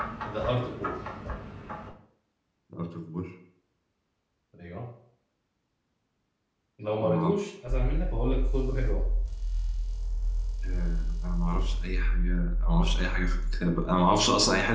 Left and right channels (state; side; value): identical; both; correlation 1.00